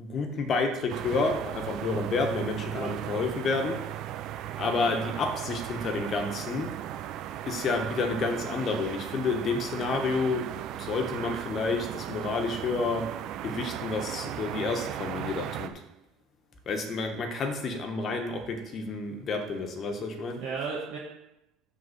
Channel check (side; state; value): both; normal; correlation 0.57